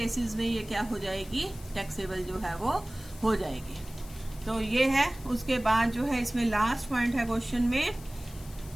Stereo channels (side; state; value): left; noise; hiss, 20 dB below the sound